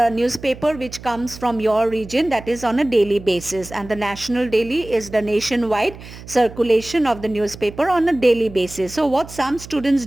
newspaper which comes from your region, that is on a daily basis, and the national daily is the nationwide circulation of the newspaper on a daily basis. So what some students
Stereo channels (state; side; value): noise; right; hum, 16 dB below the sound